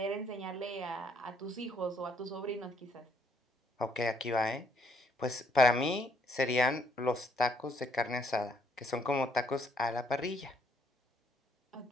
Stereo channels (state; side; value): normal; both; correlation 0.67